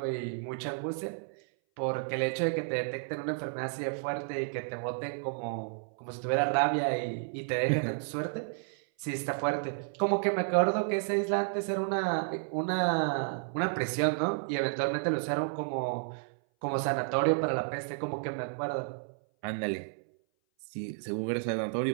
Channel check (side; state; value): left; silent; 57 dB below the other